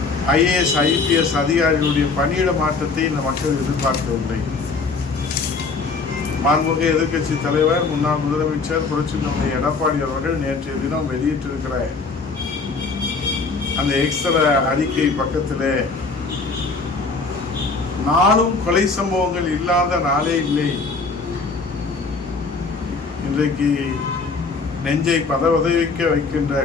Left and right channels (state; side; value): quieter; right; 4.3 dB